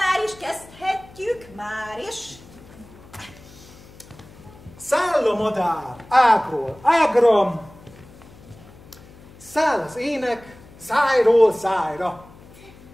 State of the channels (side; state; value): left; noise; hum, 22 dB below the sound